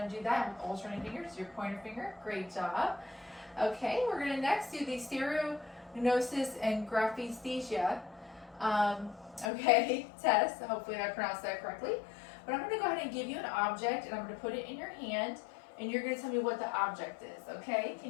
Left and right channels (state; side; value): drops out; right; at 9.5 s